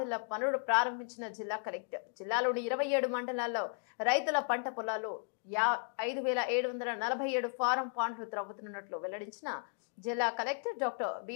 పనులు ప్రారంభించిన జిల్లా కలెక్టర్ జిల్లాలోని 27 మండలాల్లో రైతుల పంట పొలాలు 5747 ఫారం పాండ్లు త్రవ్వుతున్నట్లు వెల్లడించిన జిల్లా కలెక్టర్ డాక్టర్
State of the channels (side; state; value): right; silent; 54 dB below the other